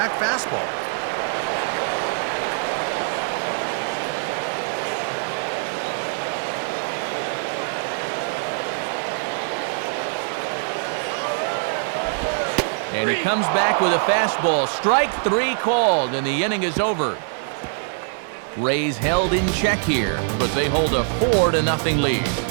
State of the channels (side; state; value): left; silent; 61 dB below the other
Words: fastball. And he comes back with a fastball. Strike 3 called, and the inning is over. Rays held in check here, but they hold a 4-0 lead.